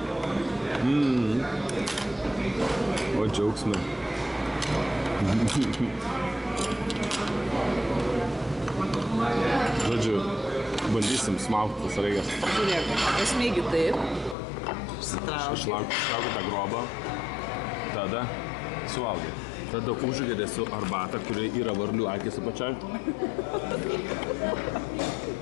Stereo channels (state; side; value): drops out; right; at 14.4 s